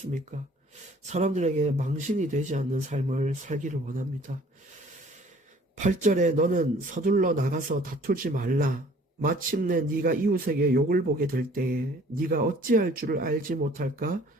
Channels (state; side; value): normal; both; correlation 0.54